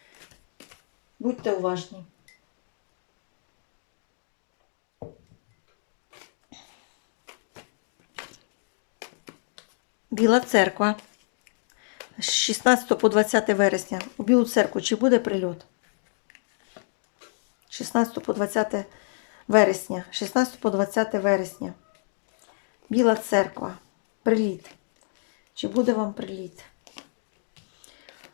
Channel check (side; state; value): right; silent; digital silence